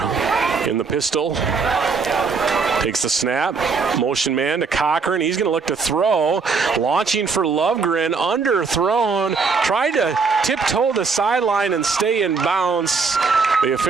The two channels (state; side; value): quieter; left; 4.9 dB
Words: in the pistol. Takes the snap. Motion man to Cochran. He's going to look to throw. Launching for Lovegren. Underthrown. Tried to tiptoe the sideline and stay in bounds. The